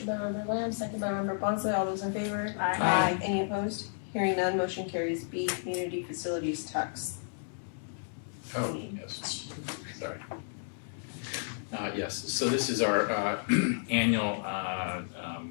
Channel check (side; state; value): right; silent; digital silence